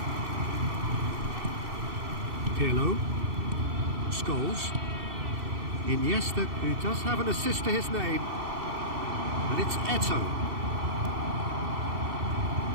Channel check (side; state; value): left; late; 2.6 ms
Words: Pirlo. Scholes. Iniesta, who does have an assist to his name. And it's Eto'o.